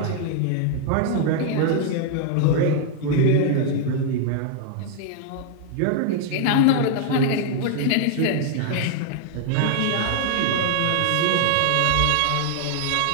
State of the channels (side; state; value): both; different; correlation 0.00